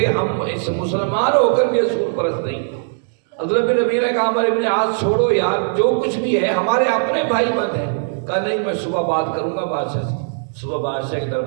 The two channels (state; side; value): silent; left; digital silence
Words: ہم اس مسلمان ہو کر بھی اصول پرست نہیں. عبداللہ بن ربیعہ نے کہا عمر بن عاص چھوڑو یار، جو کچھ بھی ہے ہمارے اپنے بھائی بند ہیں. کہا نہیں میں صبح بات کروں گا بادشاہ سے. صبح بادشاہ کے